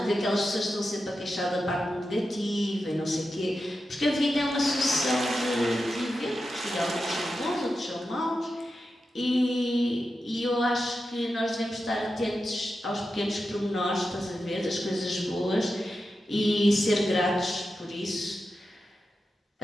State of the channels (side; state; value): both; normal; correlation 0.90